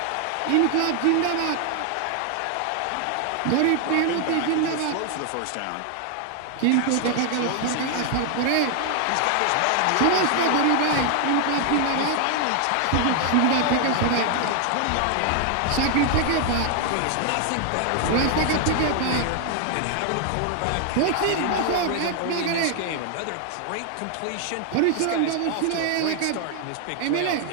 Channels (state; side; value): different; both; correlation 0.00